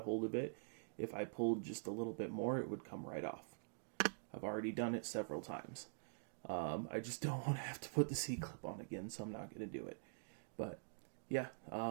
hold of it. If I pulled just a little bit more, it would come right off. I've already done it several times. I just don't want to have to put the C-clip on again, so I'm not going to do it. But yeah,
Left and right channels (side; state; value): left; silent; digital silence